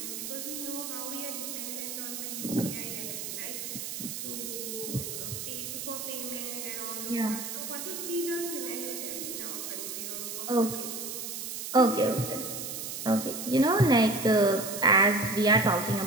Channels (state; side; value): noise; right; hiss, 6 dB below the sound